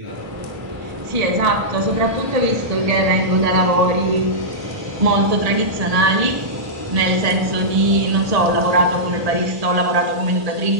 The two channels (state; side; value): late; left; 1.7 ms